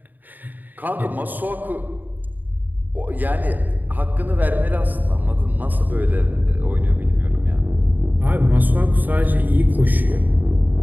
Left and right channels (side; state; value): left; late; 0.086 ms